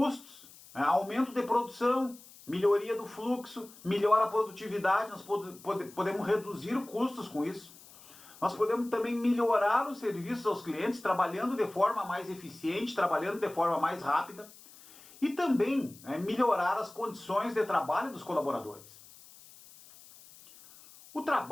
aumento de produção, melhoria do fluxo, melhora a produtividade, nós podemos reduzir custos com isso. Nós podemos também melhorar os serviços aos clientes, trabalhando de forma mais eficiente, trabalhando de forma mais rápida, e também melhorar as condições de trabalho dos colaboradores. O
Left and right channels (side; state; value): left; noise; hiss, 21 dB below the sound